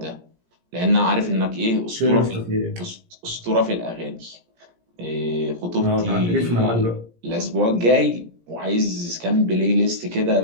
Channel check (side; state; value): left; late; 17 ms